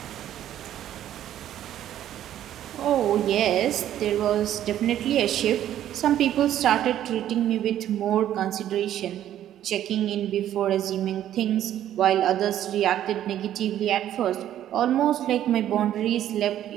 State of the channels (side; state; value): left; quieter; 11.6 dB